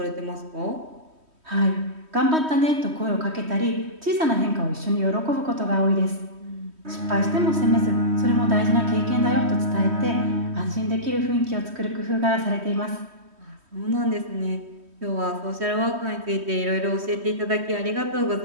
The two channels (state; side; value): late; left; 3.2 ms